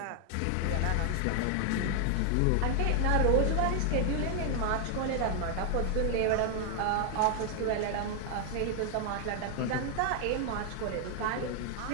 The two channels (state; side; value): different; both; correlation 0.00